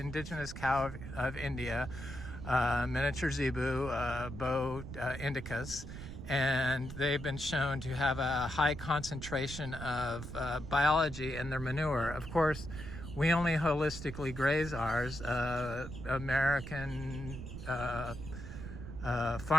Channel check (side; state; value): right; noise; rumble, 9 dB below the sound